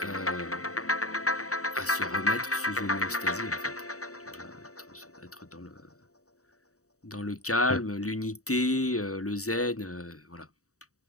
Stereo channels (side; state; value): right; late; 0.65 ms